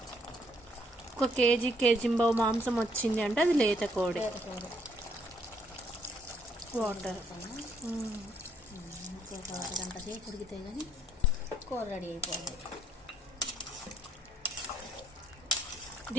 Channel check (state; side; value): normal; both; correlation 0.69